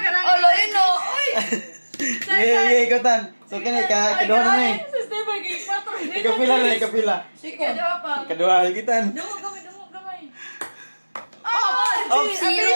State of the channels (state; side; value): inverted; both; correlation -1.00